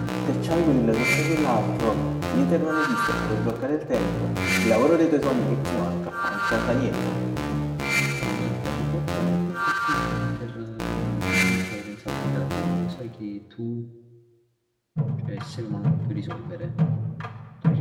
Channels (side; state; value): both; identical; correlation 1.00